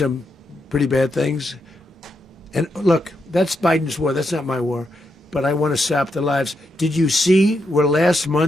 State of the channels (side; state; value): both; normal; correlation 0.82